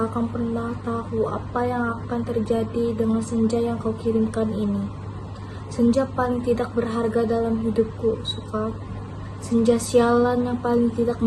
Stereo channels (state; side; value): identical; both; correlation 1.00